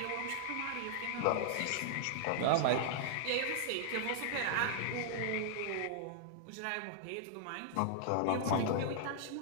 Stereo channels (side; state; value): both; different; correlation -0.01